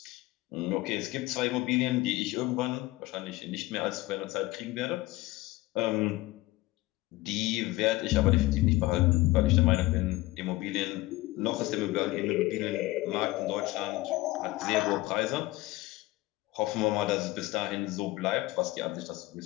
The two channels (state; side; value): quieter; right; 19.3 dB